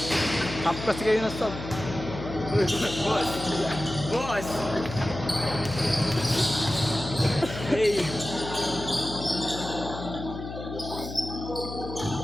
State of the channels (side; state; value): left; noise; hum, 9 dB below the sound